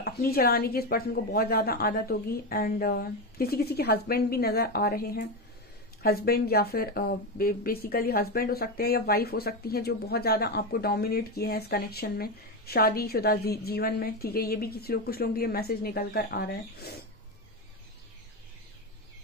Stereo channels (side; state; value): both; normal; correlation 0.14